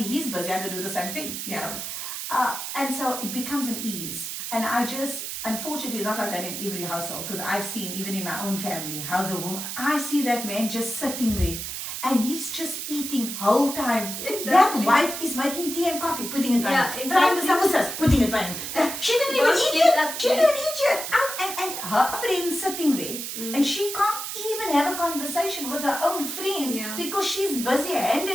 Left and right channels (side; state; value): right; noise; hiss, 6 dB below the sound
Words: he's busy, I go do the same thing, and so it becomes an ease. And unfortunately, it's not like that in every household, because I've seen, even in my own family, how I see that man just sitting there and he's just eating whole time. Exactly. That wife is making tea and coffee, putting it by him. Frying the samosas, putting it by him. She didn't even eat yet. She didn't eat yet. And her friend's sitting there, and she can't even have a conversation with her own friends because she's busy hand